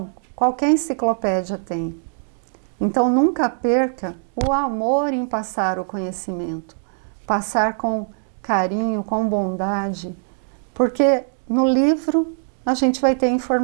qualquer enciclopédia tem. Então nunca perca o amor em passar o conhecimento, passar com carinho, com bondade, porque no livro a gente vai ter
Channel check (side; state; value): left; silent; digital silence